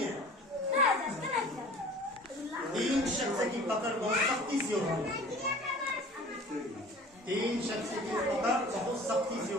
ہے۔ تین شخص کی پکڑ بہت سختی سے ہوگی، تین شخص کی پکڑ بہت سختی سے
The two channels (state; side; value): normal; both; correlation 0.44